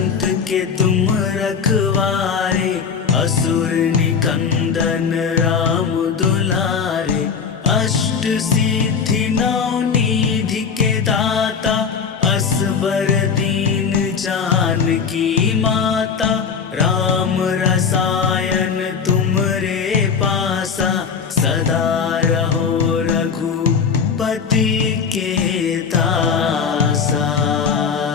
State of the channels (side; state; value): right; quieter; 6.2 dB